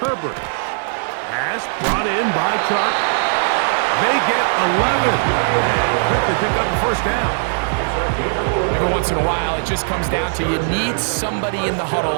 Pass brought in by Chark. They get 11. Quickly pick up the 1st down. Every once in a while, it just comes down to you need somebody in the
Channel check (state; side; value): silent; left; 63 dB below the other